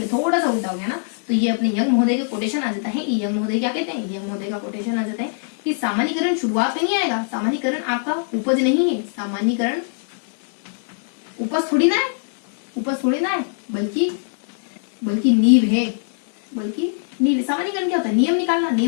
थोड़ा सा उल्टा हो गया ना। तो ये अपने यंग महोदय का कोटेशन आ जाता है। यंग महोदय क्या कहते हैं, यंग महोदय का कोटेशन आ जाता है कि सामान्यीकरण शुरुआत में नहीं आएगा, सामान्यीकरण आपका उपज नहीं है, सामान्यीकरण उपज थोड़ी ना है बल्कि नींव है, सामान्यीकरण क्या होता है, नियम निकालना।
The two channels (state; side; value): silent; right; digital silence